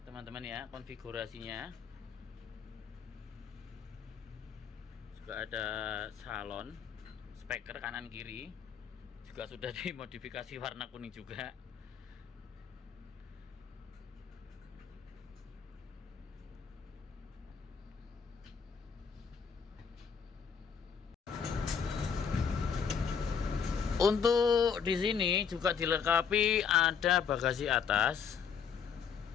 teman-teman ya, konfigurasinya juga ada salon, speaker kanan kiri juga sudah dimodifikasi warna kuning juga. Untuk di sini juga dilengkapi ada bagasi atas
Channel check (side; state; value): right; quieter; 6.9 dB